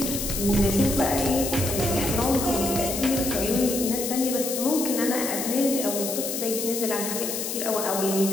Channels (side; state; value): left; noise; hiss, 4 dB below the sound